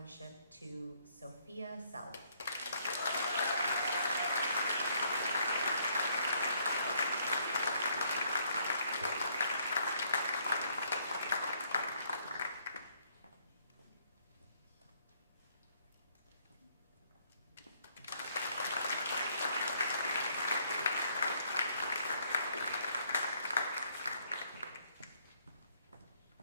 to Sophia Self.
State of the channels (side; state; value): both; inverted; correlation -0.68